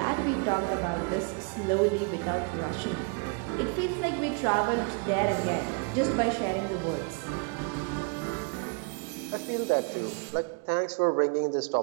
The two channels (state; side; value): quieter; left; 33.6 dB